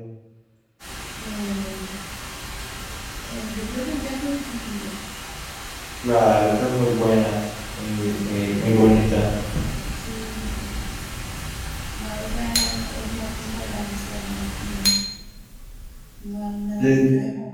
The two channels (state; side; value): identical; both; correlation 1.00